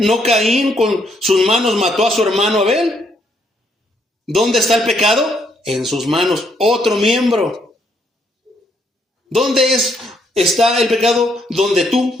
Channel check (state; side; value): normal; both; correlation 0.72